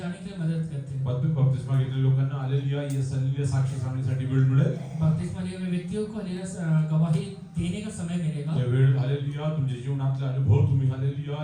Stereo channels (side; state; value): both; identical; correlation 1.00